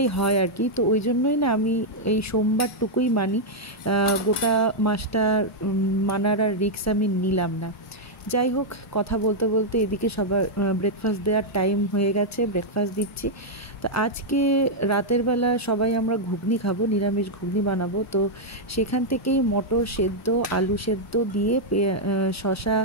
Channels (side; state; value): both; normal; correlation -0.04